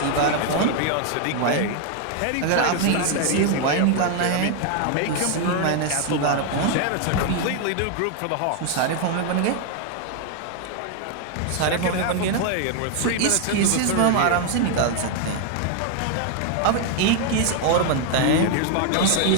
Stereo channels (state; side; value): different; both; correlation 0.00